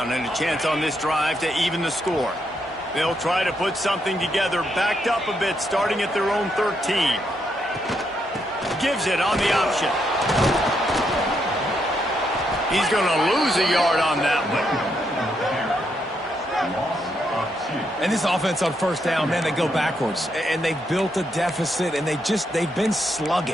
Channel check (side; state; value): both; normal; correlation 0.78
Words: and a chance on this drive to even the score. They'll try to put something together, backed up a bit, starting at their own 13. Gives it on the option. He's going to lose a yard on that one. And this offense on 1st down, man, they go backwards. And they've built a deficit, and they've been